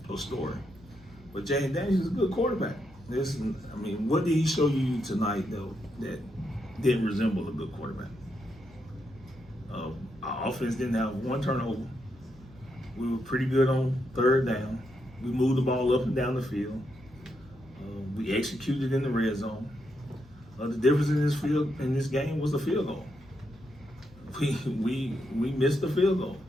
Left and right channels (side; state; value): both; normal; correlation 0.81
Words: a story. But Jalen Daniels is a good quarterback. What did he show you tonight, though, that didn't resemble a good quarterback? Our offense didn't have one turnover. We were pretty good on third down. We moved the ball up and down the field. We executed in the red zone. The difference in this game was the field goal. We missed the field goal.